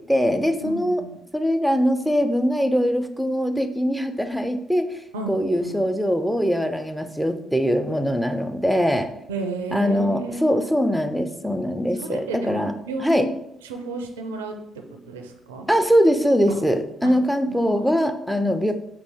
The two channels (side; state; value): both; normal; correlation 0.90